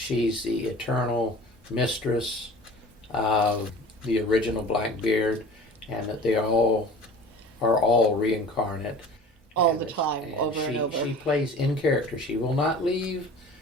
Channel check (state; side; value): normal; both; correlation 0.41